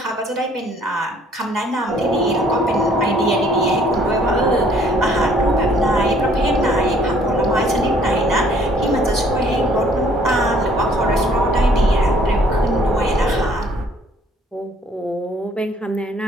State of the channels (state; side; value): normal; both; correlation 0.60